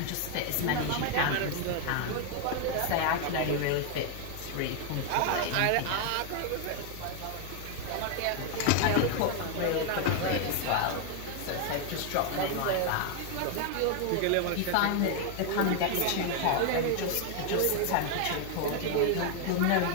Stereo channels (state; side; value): different; both; correlation 0.01